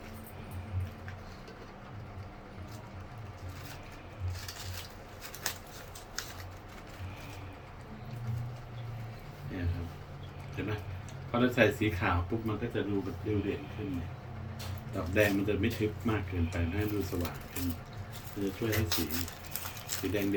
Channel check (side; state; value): both; identical; correlation 1.00